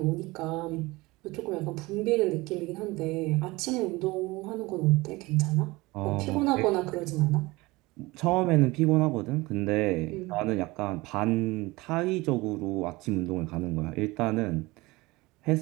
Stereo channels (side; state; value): left; quieter; 21.7 dB